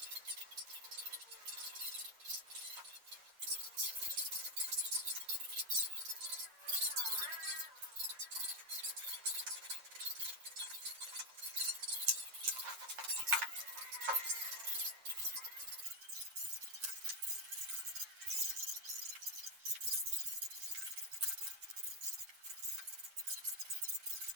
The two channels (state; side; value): late; left; 8.8 ms